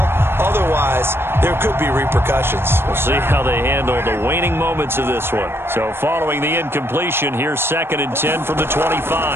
Otherwise, there could be repercussions. We'll see how they handle the waning moments of this one. So following the incompletion, here's 2nd and 10 from the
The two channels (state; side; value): late; left; 0.11 ms